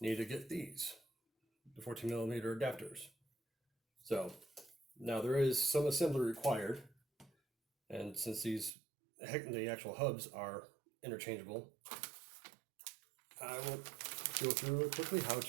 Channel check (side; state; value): left; drops out; at 8.7 s